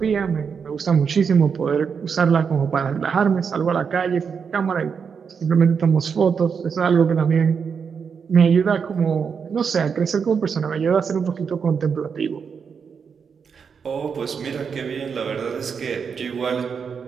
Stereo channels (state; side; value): quieter; left; 6.3 dB